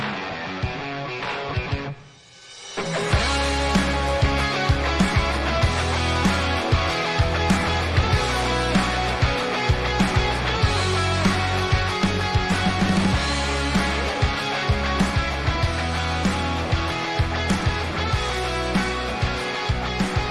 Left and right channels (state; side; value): identical; both; correlation 1.00